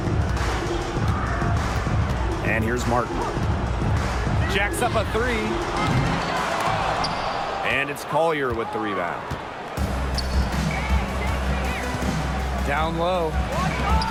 And here's Martin. Jacks up a three. And it's Collier with the rebound. Down low.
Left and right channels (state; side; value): identical; both; correlation 1.00